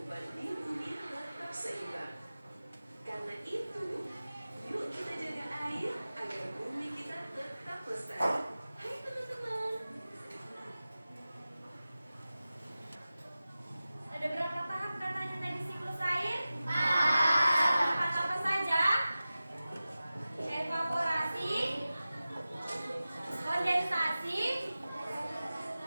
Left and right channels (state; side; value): inverted; both; correlation -0.96